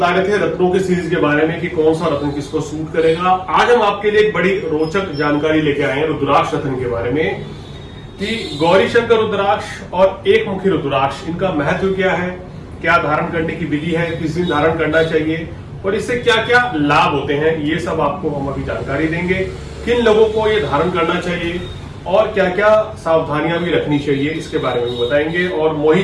रहे थे रत्नों की सीरीज के बारे में कि कौन सा रत्न किसको सूट करेगा। आज हम आपके लिए एक बड़ी रोचक जानकारी लेके आए हैं रुद्राक्ष रत्न के बारे में कि गौरी शंकर रुद्राक्ष और एक मुखी रुद्राक्ष, इनका महत्व क्या है, क्या धारण करने की विधि है, किस दिन धारण करना चाहिए और इससे क्या क्या लाभ होते हैं, ये सब आपको हम अभी जानकारी देंगे। किन लोगों को ये धारण करना चाहिए और क्या क्या सावधानियां भी रखनी चाहिए, इसके बारे में भी बताएंगे। और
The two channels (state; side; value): identical; both; correlation 1.00